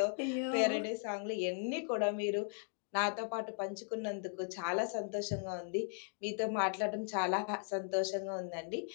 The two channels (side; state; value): right; silent; 53 dB below the other